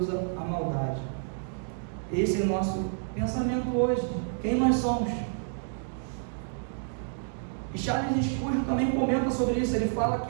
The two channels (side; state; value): left; silent; digital silence